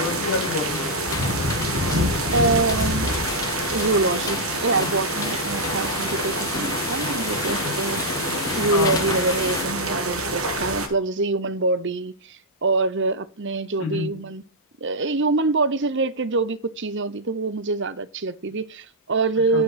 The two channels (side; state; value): both; normal; correlation -0.07